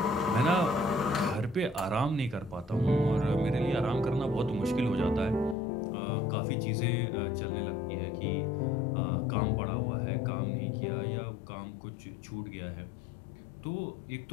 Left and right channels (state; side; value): drops out; right; at 5.6 s